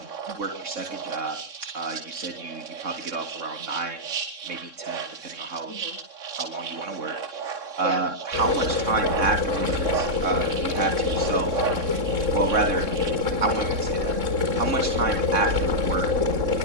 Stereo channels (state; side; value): late; left; 3.6 ms